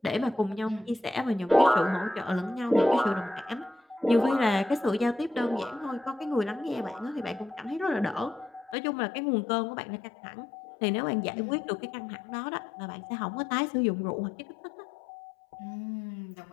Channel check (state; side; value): drops out; right; at 8.8 s